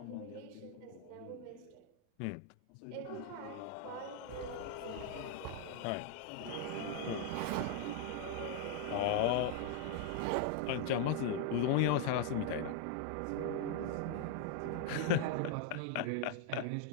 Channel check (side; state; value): both; different; correlation 0.00